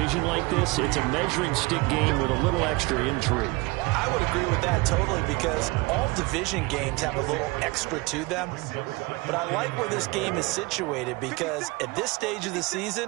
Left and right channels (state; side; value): quieter; left; 24.3 dB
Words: like this, it's a measuring stick game with a little extra intrigue. I would agree with that totally because all division games have a little extra to them. But I like where this game is situated because at this stage of the